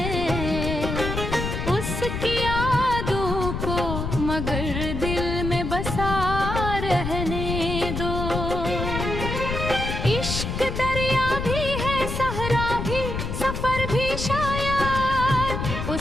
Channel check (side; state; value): left; noise; rumble, 3 dB below the sound